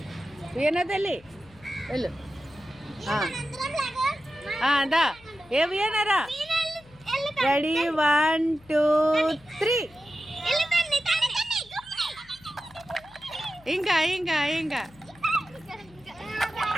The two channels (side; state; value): left; noise; hum, 25 dB below the sound